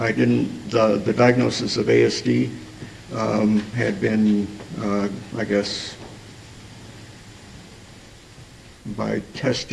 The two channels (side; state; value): both; identical; correlation 1.00